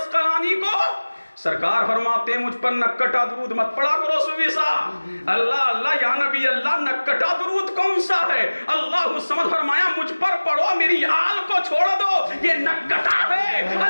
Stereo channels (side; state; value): both; inverted; correlation -1.00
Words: کو, سرکار فرماتے ہیں مجھ پر نکٹا درود مت پڑھا کرو صوفی صاحب. اللہ اللہ یا نبی اللہ نکٹا درود کون سا ہے؟ اللہ الصمد فرمایا مجھ پر پڑھو, میری آل کو چھوڑ دو, یہ نکٹا ہے.